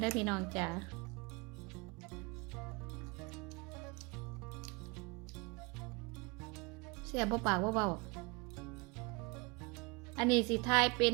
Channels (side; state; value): left; quieter; 28.3 dB